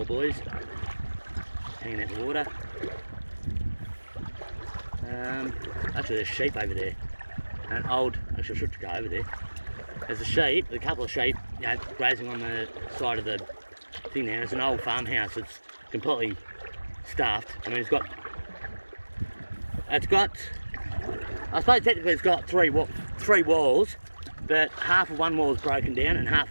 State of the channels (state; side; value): inverted; both; correlation -1.00